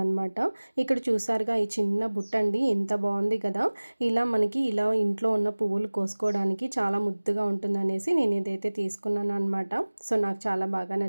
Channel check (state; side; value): inverted; both; correlation -1.00